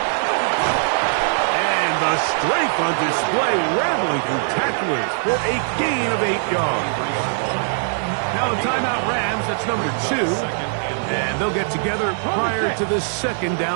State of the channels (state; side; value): silent; left; 65 dB below the other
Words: And the strength on display, rattling through tacklers for a gain of 8 yards. Now the timeout Rams, that's number 2, and they'll get together prior to the 2nd